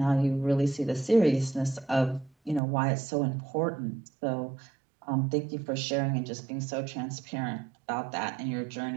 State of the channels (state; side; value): drops out; left; at 2.6 s